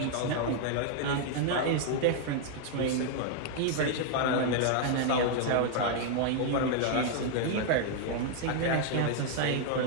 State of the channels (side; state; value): both; different; correlation 0.00